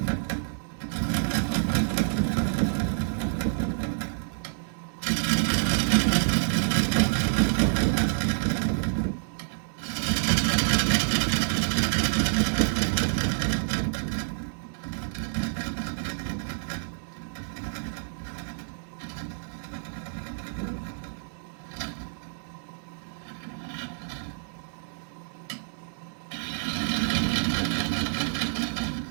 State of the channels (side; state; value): left; silent; digital silence